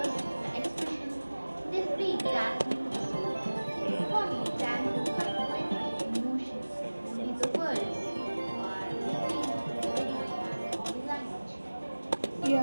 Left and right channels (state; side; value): inverted; both; correlation -1.00